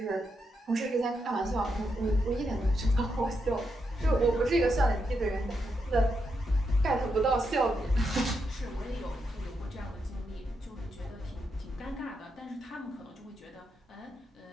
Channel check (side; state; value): both; normal; correlation 0.83